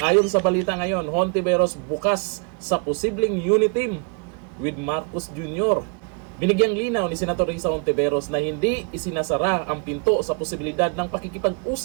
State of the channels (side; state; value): left; quieter; 36.8 dB